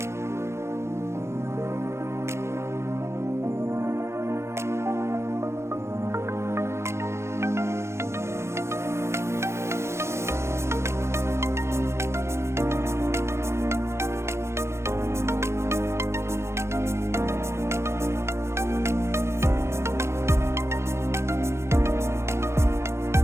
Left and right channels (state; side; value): late; left; 0.13 ms